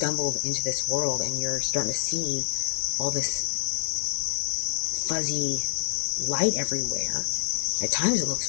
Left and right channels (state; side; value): silent; right; 60 dB below the other